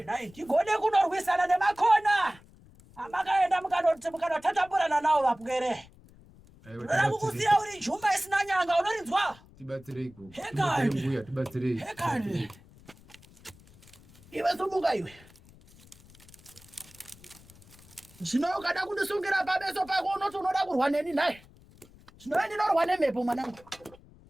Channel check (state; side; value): noise; left; rumble, 24 dB below the sound